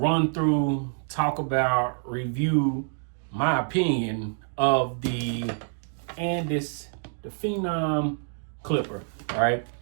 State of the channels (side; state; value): left; silent; 58 dB below the other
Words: through, talk about, review my opinion of the Andis, the Phenom clipper, all right?